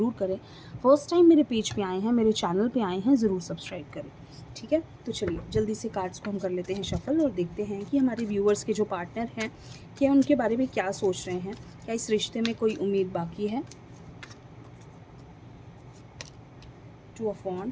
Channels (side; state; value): both; identical; correlation 1.00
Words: करें। फर्स्ट टाइम मेरे पेज पे आए हैं, मेरे चैनल पे आए हैं, ज़रूर सब्सक्राइब करें। ठीक है, तो चलिए जल्दी से कार्ड्स को हम कर लेते हैं शफल और देखते हैं कि हमारे व्यूअर्स के जो पार्टनर हैं क्या उनके बारे में क्या सोच रहे हैं, क्या इस रिश्ते में कोई उम्मीद बाकी है। Two of